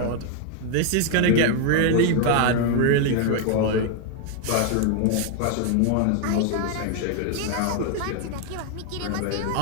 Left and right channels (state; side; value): different; both; correlation 0.01